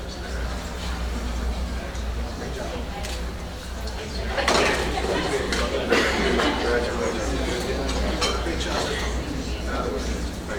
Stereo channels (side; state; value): both; identical; correlation 1.00